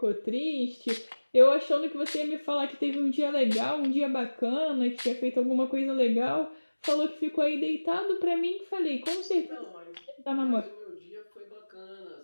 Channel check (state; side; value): inverted; both; correlation -1.00